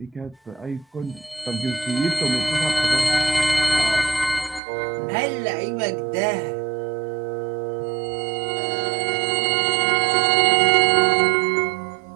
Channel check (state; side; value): drops out; left; at 4.6 s